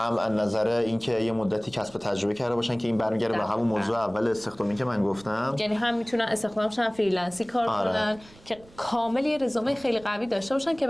از نظر اینکه یه مدتی کسب تجربه کرده باشن که این برمیگره به همون موضوع اول استخدامی که من گفتم، یعنی هم میتونن استخدامشن فریلنسی کار کنن که کامل یه رزومه خیلی قوی داشته باشن که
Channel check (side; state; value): right; noise; rumble, 24 dB below the sound